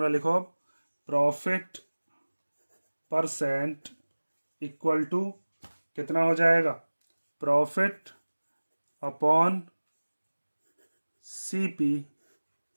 लिखो, प्रॉफिट परसेंट इक्वल टू कितना हो जाएगा, प्रॉफिट अपॉन सीपी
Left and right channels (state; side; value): inverted; both; correlation -1.00